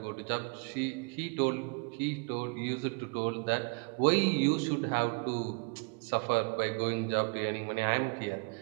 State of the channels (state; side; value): quieter; left; 35.0 dB